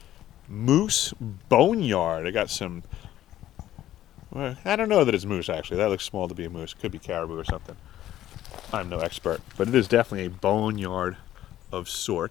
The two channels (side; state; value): right; quieter; 13.0 dB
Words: moose boneyard. I got some... Well, I don't know that it's moose, actually. That looks small to be a moose. Could be caribou or something. I'm no expert, but it is definitely a boneyard of